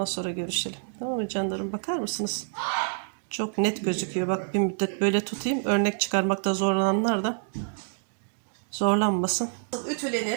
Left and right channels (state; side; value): silent; left; digital silence